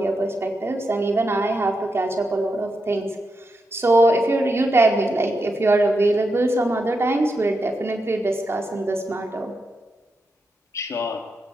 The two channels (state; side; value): normal; both; correlation 0.85